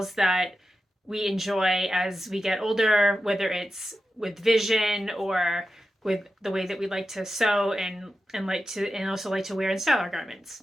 that we enjoy as we get older, whether it's with vision or with the way that we like to sew and also like to wear and style our garments.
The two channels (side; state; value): both; normal; correlation 0.91